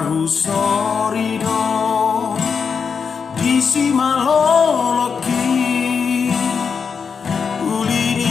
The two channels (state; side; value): quieter; right; 6.0 dB